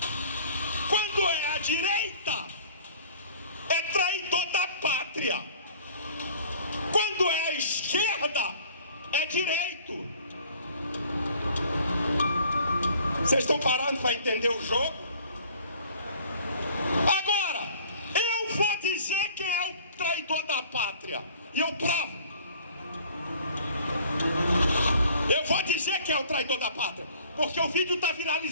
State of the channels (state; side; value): inverted; both; correlation -0.52